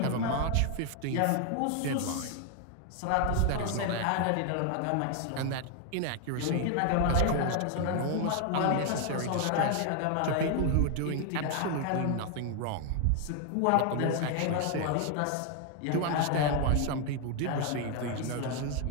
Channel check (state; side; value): different; both; correlation 0.00